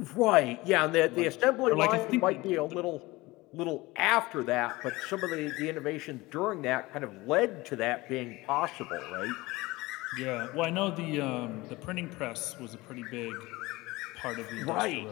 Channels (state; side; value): quieter; right; 21.0 dB